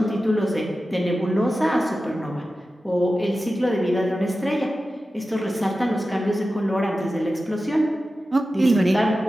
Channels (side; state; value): both; normal; correlation 0.94